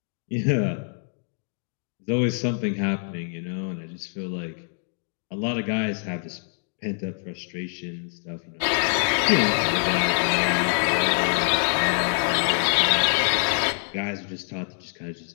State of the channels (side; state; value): right; silent; digital silence